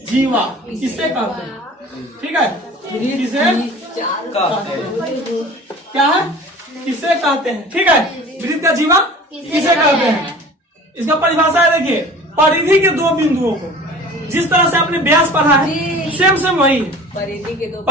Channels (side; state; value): both; normal; correlation 0.42